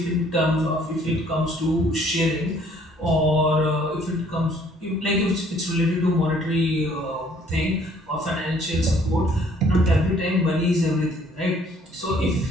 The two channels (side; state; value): both; normal; correlation 0.60